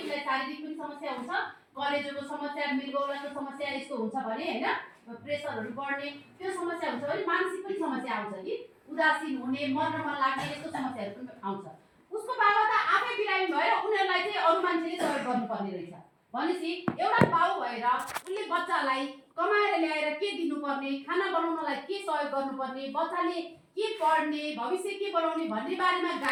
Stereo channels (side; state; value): both; identical; correlation 1.00